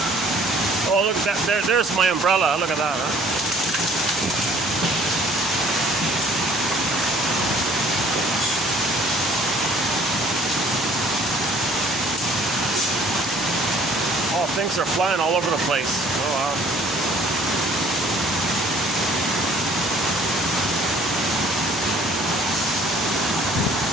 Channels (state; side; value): normal; both; correlation 0.56